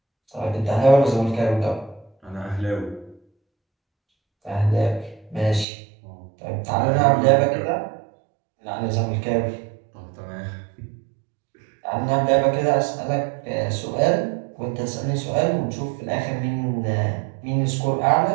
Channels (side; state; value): left; drops out; at 5.7 s